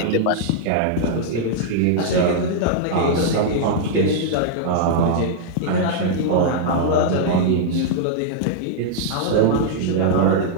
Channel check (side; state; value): both; different; correlation -0.01